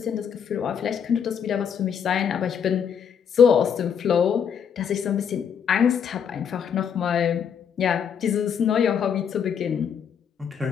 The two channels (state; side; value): quieter; right; 7.6 dB